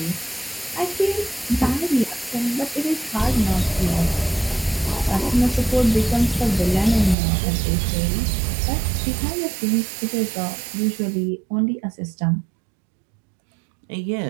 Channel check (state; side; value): drops out; left; at 7.2 s